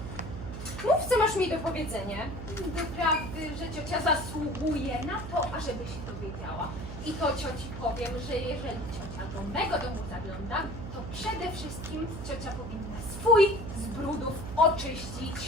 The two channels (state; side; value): noise; right; hum, 8 dB below the sound